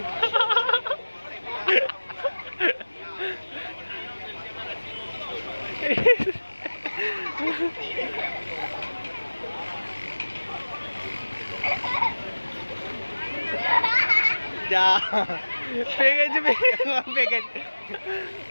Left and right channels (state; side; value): inverted; both; correlation -1.00